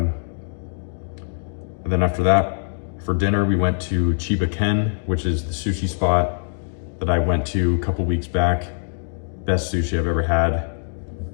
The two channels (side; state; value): right; silent; digital silence